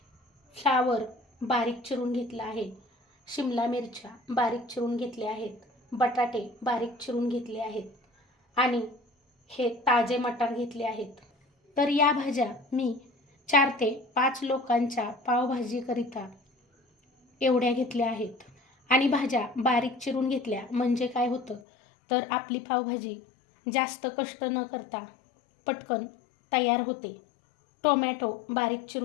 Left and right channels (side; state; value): right; drops out; at 21.6 s